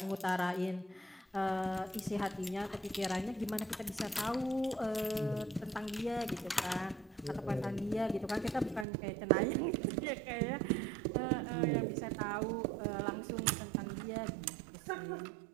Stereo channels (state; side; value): drops out; left; at 8.8 s